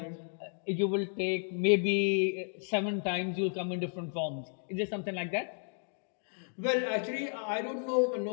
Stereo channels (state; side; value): silent; right; 56 dB below the other